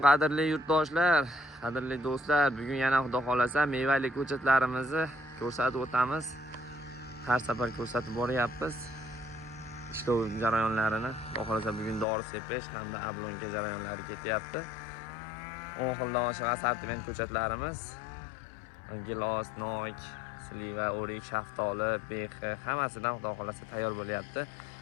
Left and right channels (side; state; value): right; drops out; at 12.1 s